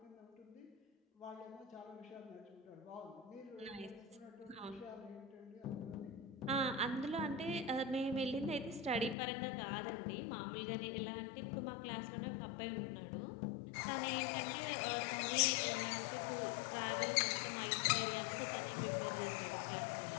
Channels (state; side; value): drops out; right; at 9.2 s